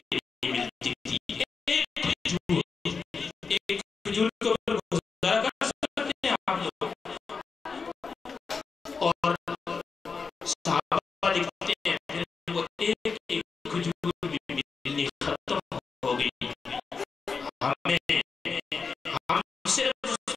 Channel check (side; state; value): right; quieter; 5.0 dB